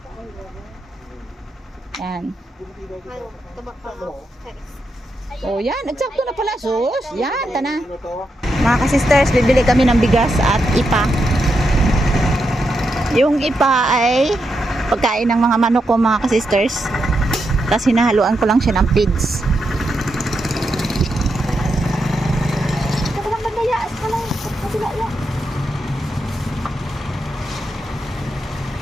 Yan. Tabak pa ako. Oh, yan. Eksakto na pala. Sus. Yan, tana. Ano to? Mga ka-sisters, bibili kami ng bigas at ipa. Yung ipa ay pagkain ng mga manok ko, mga ka-sisters. Tapos hinahaluan ko lang siya ng feeds.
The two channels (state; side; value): normal; both; correlation 0.84